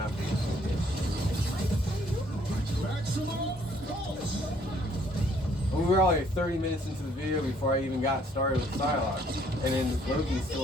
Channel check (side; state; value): both; normal; correlation 0.64